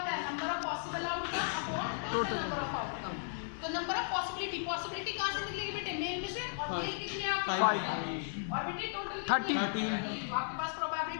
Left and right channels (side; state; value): right; silent; digital silence